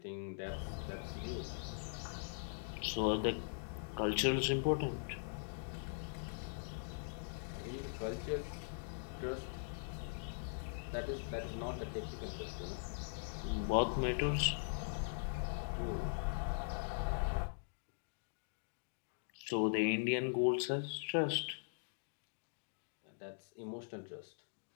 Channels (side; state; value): right; silent; digital silence